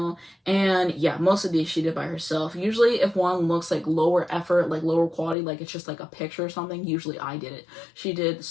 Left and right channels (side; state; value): right; drops out; at 5.4 s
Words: And yeah, most of these she did by herself. Usually if one looks like lower effort, like lower quality, like it's just like a picture or something, usually I did it. She did the